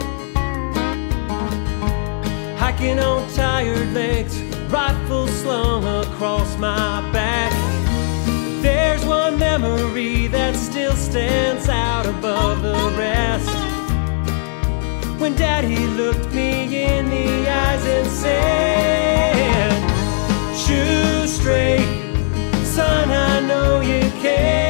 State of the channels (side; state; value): right; silent; digital silence